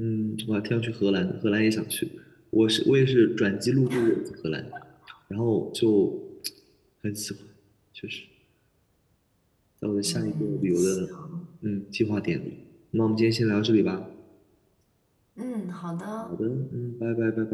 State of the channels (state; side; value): identical; both; correlation 1.00